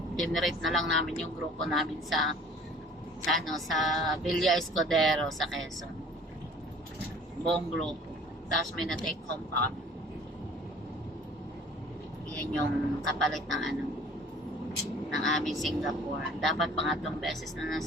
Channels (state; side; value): normal; both; correlation 0.50